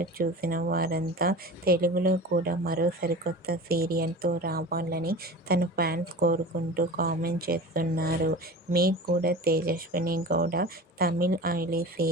చూసిన వారంతా తెలుగులో కూడా మరో సరికొత్త సీరియల్తో రావాలని తన ఫ్యాన్స్ కోరుకుంటూ కామెంట్ చేస్తున్నారు. మీకు కూడా తేజస్విని గౌడ తమిళ్ ఐలీ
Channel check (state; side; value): normal; both; correlation 0.35